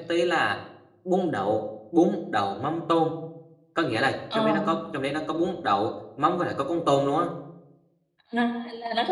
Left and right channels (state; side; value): identical; both; correlation 1.00